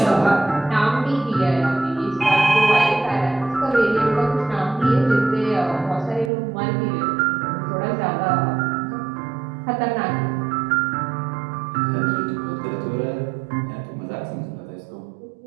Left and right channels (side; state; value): left; drops out; at 6.3 s